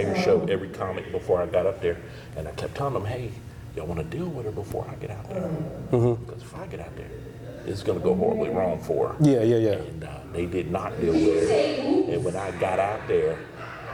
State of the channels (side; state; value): both; identical; correlation 1.00